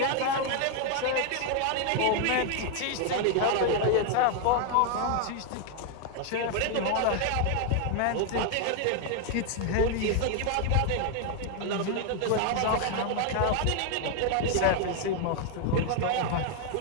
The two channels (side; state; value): both; different; correlation 0.00